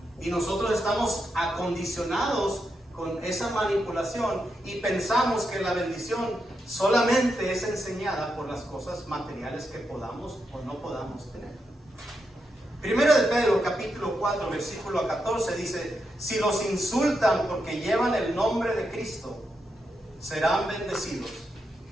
Y nosotros estamos acondicionados con esa manipulación y pensamos que la bendición solamente es enseñada por las cosas materiales que podamos o no podamos tener. Primero de Pedro, capítulo 4, versículo 14, dice: si los insultan porque llevan el nombre de Cristo, serán bendecidos,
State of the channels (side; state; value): both; normal; correlation 0.84